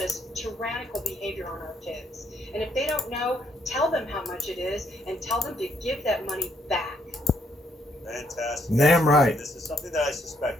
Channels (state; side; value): normal; both; correlation 0.71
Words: tyrannical behavior on our kids? And if they don't know, tell them how much it is and tell them to give that money back. Fantastic. Damn right. This is something that I